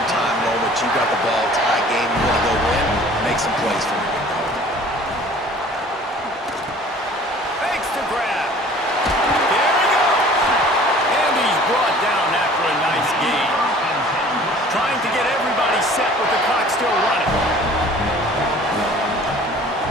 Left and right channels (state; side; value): normal; both; correlation 0.49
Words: time moment. You got the ball, tie game, you want to go win, make some plays for me. Fakes to grab. There he goes. And he's brought down after a nice gain. Trying to get everybody set with the clock still running.